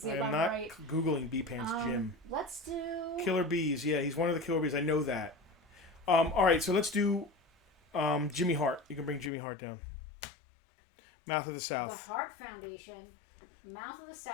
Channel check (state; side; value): drops out; right; at 9.3 s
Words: see if I'm not right. Googling B Pants Jim. Let's do... Killer Bees. Yeah, he's one of the Killer Bees. I know that. All right, so let's do Jimmy Hart. You can bring Jimmy Hart down. Mouth of the South. The Hart Foundation. Mouth of the